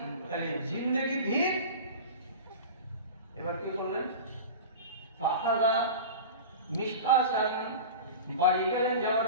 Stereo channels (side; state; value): both; inverted; correlation -0.32